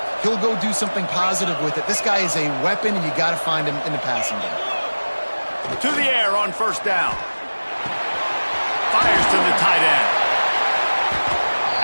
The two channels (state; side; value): inverted; both; correlation -1.00